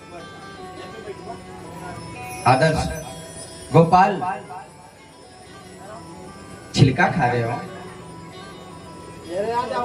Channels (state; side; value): identical; both; correlation 1.00